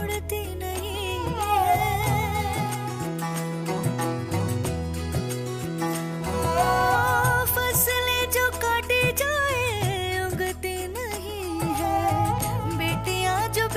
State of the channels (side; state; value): both; identical; correlation 1.00